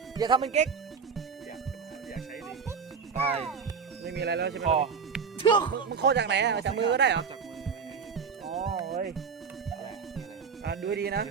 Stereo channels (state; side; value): quieter; left; 5.9 dB